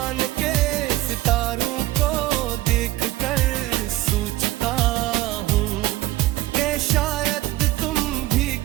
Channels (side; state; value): left; quieter; 16.6 dB